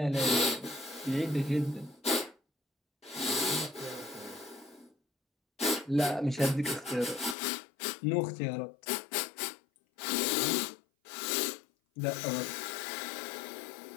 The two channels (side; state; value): right; drops out; at 7.4 s